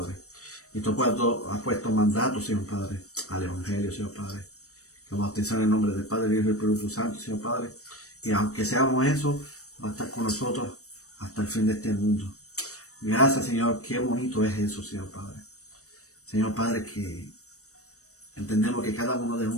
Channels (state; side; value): late; right; 0.65 ms